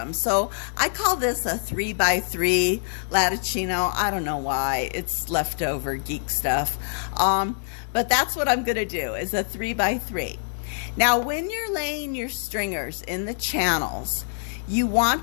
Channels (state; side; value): silent; right; digital silence